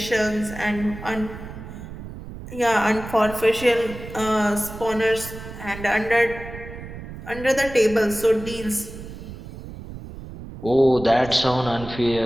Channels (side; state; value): right; noise; rumble, 12 dB below the sound